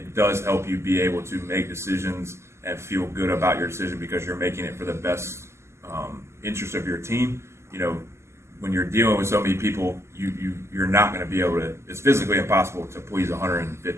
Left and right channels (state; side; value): late; left; 0.13 ms